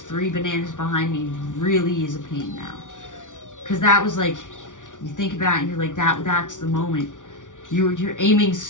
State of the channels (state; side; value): late; right; 0.87 ms